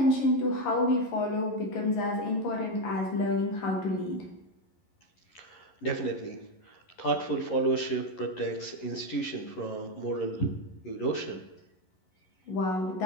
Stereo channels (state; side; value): late; right; 11 ms